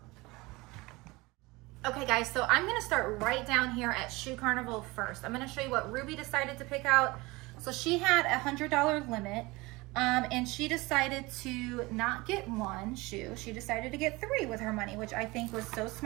Okay guys, so I'm gonna start right down here at Shoe Carnival first. I'm gonna show you what Ruby decided to pick out. So she had a $100 limit, and she decided to not get 1 shoe. She decided to get 3 with her money, which I think was so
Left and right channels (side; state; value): left; quieter; 22.7 dB